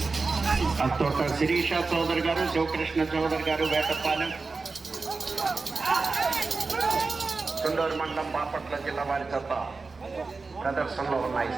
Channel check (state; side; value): quieter; left; 4.1 dB